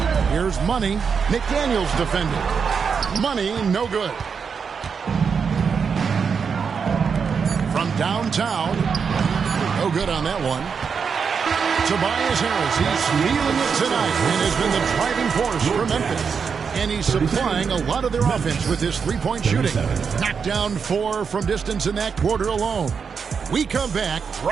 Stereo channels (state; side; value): quieter; left; 6.1 dB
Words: Here's Money. McDaniels defending. Money, no good. From downtown. No good on that one. Tobias Harris, he's feeling it tonight and has been the driving force for Memphis. And he's supplying a lot of their offense with his three-point shooting. Knocked down 4 from distance in that quarter alone. We come back